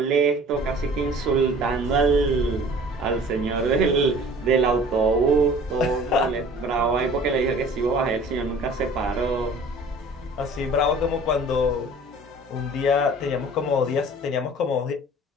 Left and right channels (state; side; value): normal; both; correlation 0.47